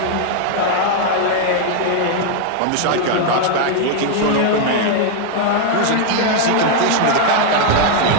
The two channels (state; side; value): different; both; correlation 0.00